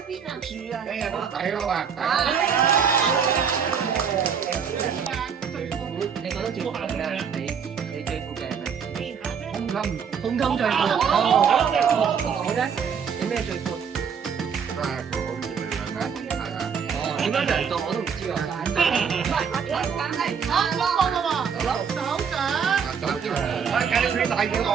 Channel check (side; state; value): left; quieter; 6.9 dB